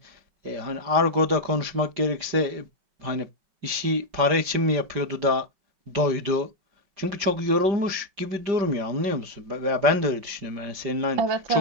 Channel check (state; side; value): late; left; 5.0 ms